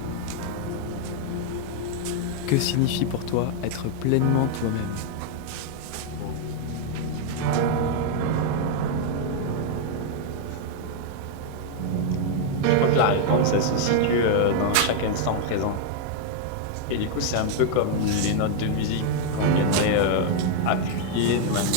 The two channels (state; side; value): different; both; correlation 0.00